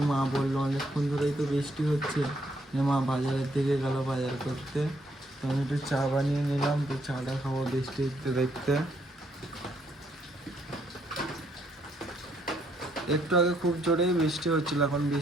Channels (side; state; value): both; normal; correlation 0.71